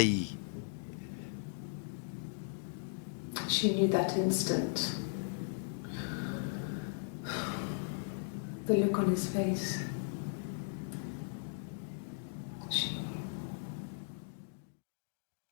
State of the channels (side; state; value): right; silent; digital silence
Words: She knew that instant. The look on his face.